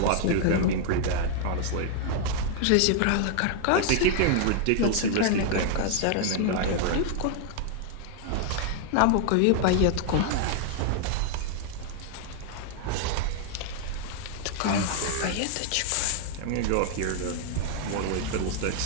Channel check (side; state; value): both; different; correlation 0.00